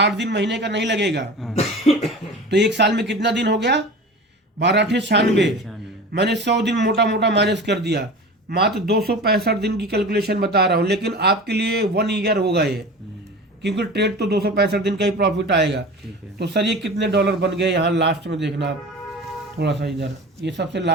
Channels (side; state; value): both; normal; correlation 0.35